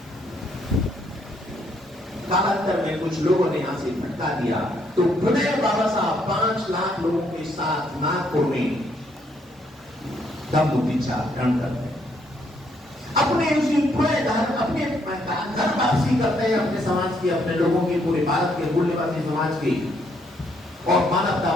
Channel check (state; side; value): normal; both; correlation 0.71